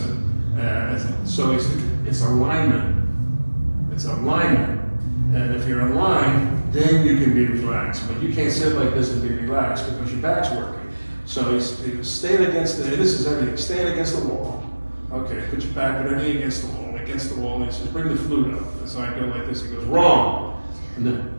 So he said, it's alignment. It's alignment. And if you're in line, then you can be relaxed. But you can't sit like this and be relaxed because your back's working. So he goes, stand against and this is everything, stand against the wall. Okay, put your back, put everything against the wall, and he says, bring the flute up. And so I go like this, he goes, wrong. And then,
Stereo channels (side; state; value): both; inverted; correlation -1.00